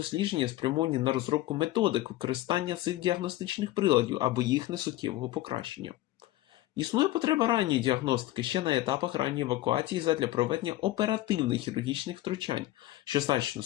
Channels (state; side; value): quieter; right; 15.8 dB